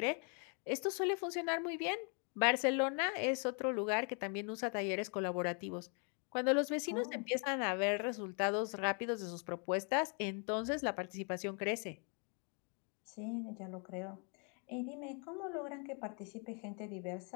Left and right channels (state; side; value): quieter; right; 39.9 dB